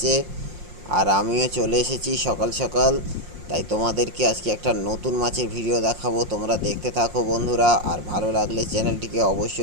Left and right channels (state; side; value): late; left; 5.6 ms